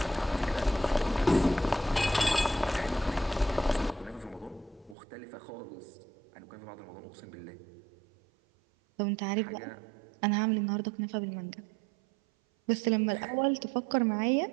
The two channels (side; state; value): left; drops out; at 5.0 s